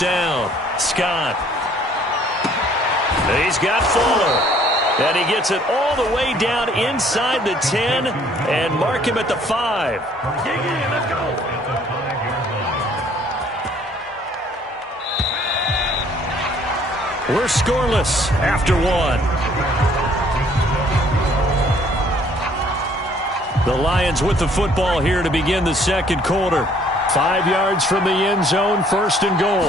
Scott. He's got Fuller. And he gets it all the way down inside the 10 and mark him at the 5. Let's go. We're scoreless after 1. The Lions with the football here to begin the 2nd quarter. 5 yards from the end zone, 1st and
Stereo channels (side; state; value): both; normal; correlation 0.60